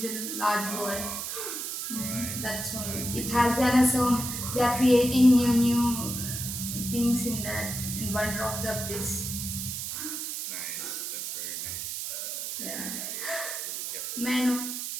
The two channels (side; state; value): right; noise; hiss, 4 dB below the sound